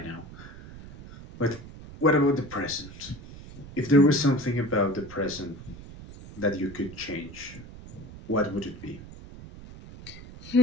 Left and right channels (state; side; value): noise; right; rumble, 15 dB below the sound